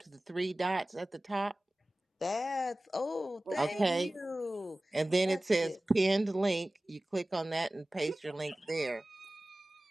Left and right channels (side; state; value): both; normal; correlation 0.97